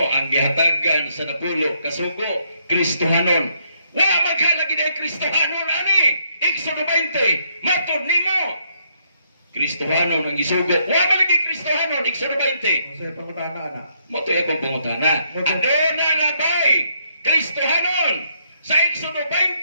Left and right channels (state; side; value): inverted; both; correlation -0.72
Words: ang gihatagan sa napulo kasugo Kristohanon. Wa maghalagi na Kristohanon ani. Exodo 20. Matod nimo Kristohanon ang isugo. Wa malagi Kristohanon Exodo 20. Sa pangutana ana. Motoy akong pangutana. Aduna na bay Kristohanon sa Exodo